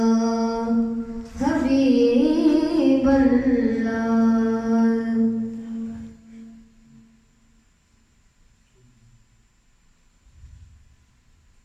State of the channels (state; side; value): identical; both; correlation 1.00